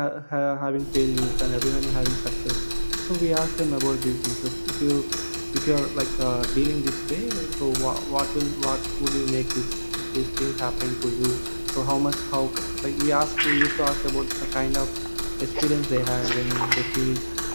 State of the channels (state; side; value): inverted; both; correlation -1.00